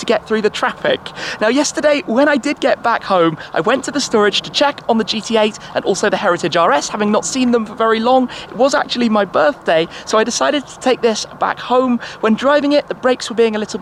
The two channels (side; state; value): both; identical; correlation 1.00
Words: get through the traffic. Now yesterday, when I did get back home, I went to the storage to check on the GT8 and also the Heritage RS, having not seen them for very long. It was actually my birthday, so I decided to take this back home. When driving it, the brakes were being a little